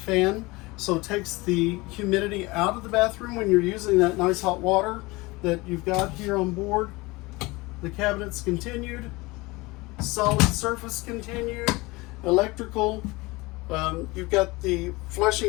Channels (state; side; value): quieter; right; 23.0 dB